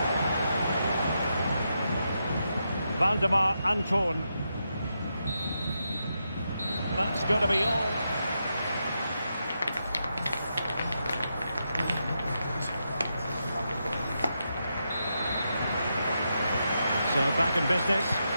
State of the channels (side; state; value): both; inverted; correlation -0.84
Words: Valdemar Anton. That's going to be all. So back in business.